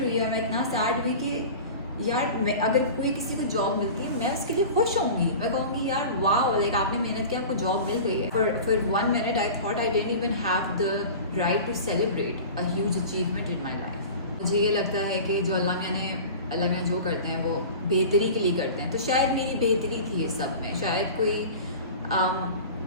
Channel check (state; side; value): inverted; both; correlation -0.36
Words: हुई और मैं इतना सैड हुई कि यार मैं, अगर कोई किसी को जॉब मिलती है मैं उसके लिए खुश होंगी, मैं कहूँगी यार वाह, लाइक आपने मेहनत की, आपको जॉब मिल गई है। For 1 minute I thought I didn't even have the right to celebrate a huge achievement in my life. मुझे ये लगता है कि जो अल्लाह ने जो करते हैं वो बेहतरी के लिए करते हैं, तो शायद मेरी बेहतरी थी ये सब में, शायद कोई